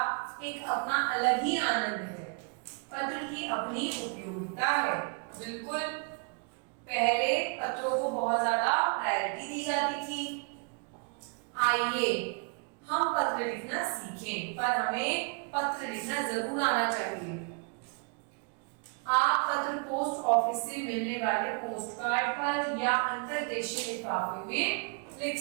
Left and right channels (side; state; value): left; quieter; 36.1 dB